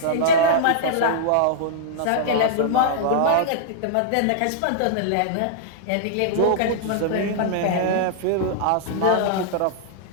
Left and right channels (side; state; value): both; different; correlation -0.02